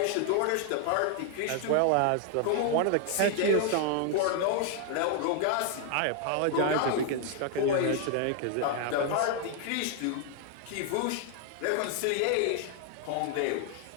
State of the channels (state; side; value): different; both; correlation 0.00